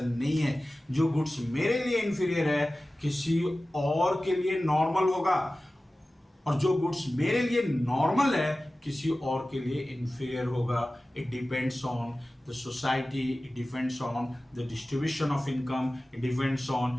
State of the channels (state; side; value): normal; both; correlation 0.96